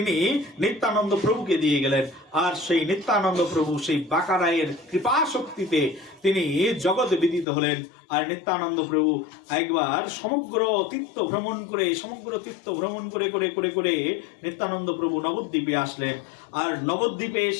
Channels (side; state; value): right; drops out; at 7.5 s